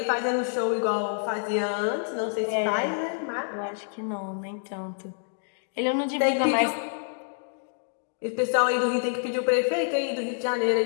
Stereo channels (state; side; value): silent; right; digital silence